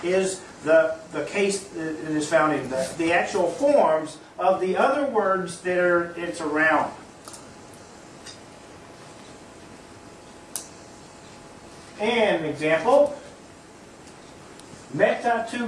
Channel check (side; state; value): both; identical; correlation 1.00